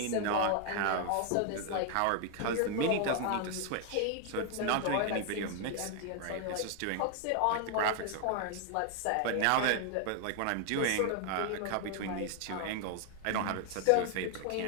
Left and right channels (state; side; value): different; both; correlation 0.00